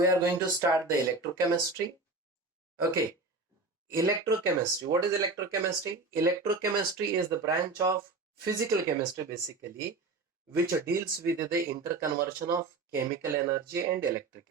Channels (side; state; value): left; quieter; 3.6 dB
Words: are going to start the electrochemistry. Okay, electrochemistry. What is electrochemistry? Electrochemistry is the branch of physical chemistry basically, which deals with the interconversion of chemical energy and